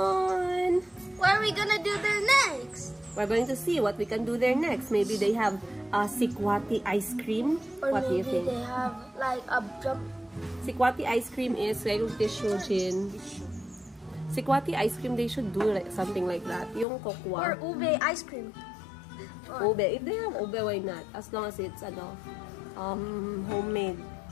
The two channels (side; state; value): right; drops out; at 16.9 s